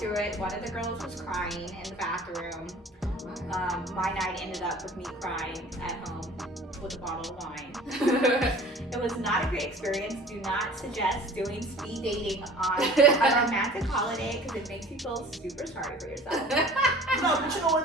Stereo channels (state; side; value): normal; both; correlation 0.45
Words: it, one of the girls was crying in the bathroom. My night ended up with me crying at home with a bottle of wine. It was not a great experience. Do not suggest doing speed dating on a romantic holiday because it makes you feel super sorry for yourself. No, but you know what